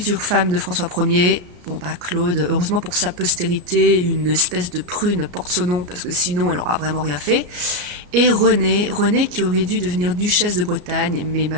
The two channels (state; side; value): late; left; 34 ms